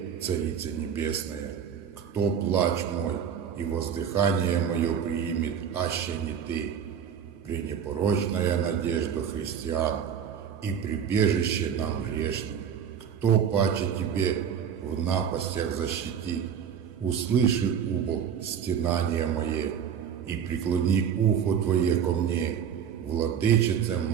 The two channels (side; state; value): left; quieter; 8.0 dB